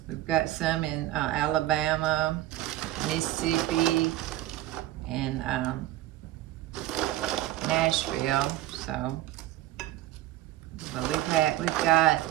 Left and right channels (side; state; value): left; quieter; 15.0 dB